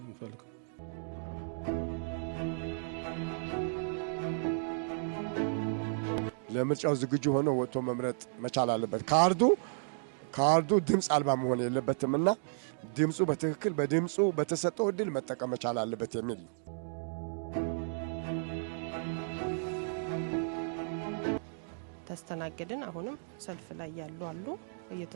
እንፈልገው። ለምርጫው ዝግጁ ሆኖ ወጥቶ መምረጥ መቻል አለበት። ካርዱ ድምጽ አልባ መሆን የለበትምና ድምጹ በትክክል በድምጹ በተሰጠው እድል መጠቀም መቻል አለበት የሚል ነው። ተስተናገድን። አሁንም ሰልፍ ላይ ያሉ አሉ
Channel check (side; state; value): left; silent; digital silence